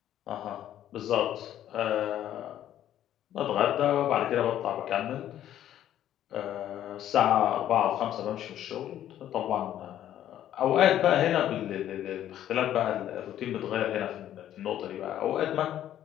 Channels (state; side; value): quieter; right; 11.6 dB